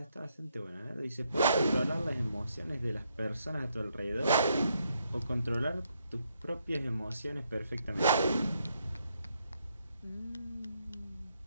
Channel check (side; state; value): both; inverted; correlation -0.75